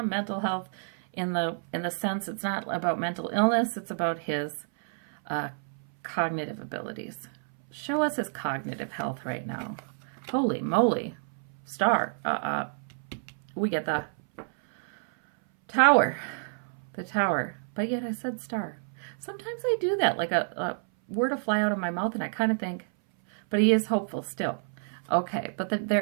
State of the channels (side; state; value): left; silent; 59 dB below the other